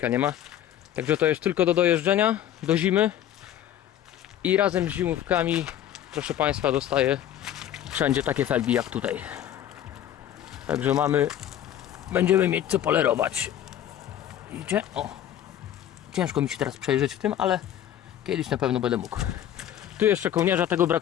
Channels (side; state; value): right; quieter; 11.1 dB